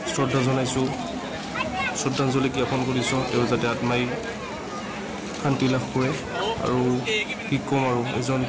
শ্ৰদ্ধা জনাইছো শ্ৰদ্ধাঞ্জলি জ্ঞাপন কৰিছো তেওঁ যাতে আত্মাই শান্তি লাভ কৰে আৰু কি কম আৰু এজন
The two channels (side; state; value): both; identical; correlation 1.00